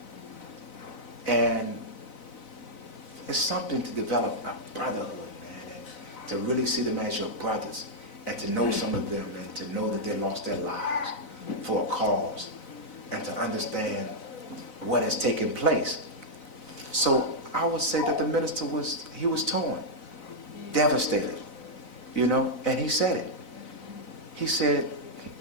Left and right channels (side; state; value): right; late; 4.0 ms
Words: And it's something to develop a brotherhood, man, and to really see them as your brothers, and to know some of them, and to know that they lost their lives for a cause, and to understand what has taken place. So I would say that the minister was torn, devastated, you know, and he said it. He said,